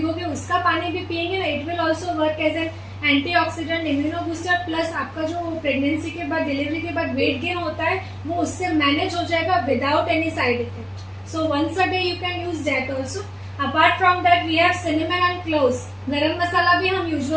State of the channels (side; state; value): both; identical; correlation 1.00